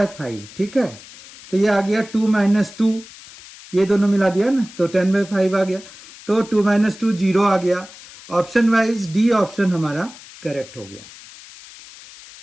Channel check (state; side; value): noise; left; hiss, 19 dB below the sound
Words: ठीक है, तो ये आ गया 2 माइनस 2, ये दोनों मिला दिया ना तो 10/5 आ गया, तो 2 माइनस 2 0 आ गया। ऑप्शन वाइज डी ऑप्शन हमारा करेक्ट हो गया।